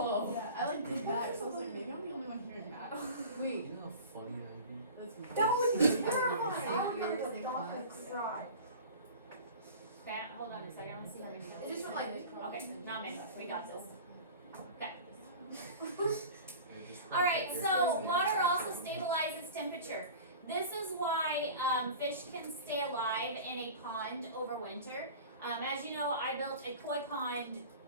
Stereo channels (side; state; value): both; inverted; correlation -0.38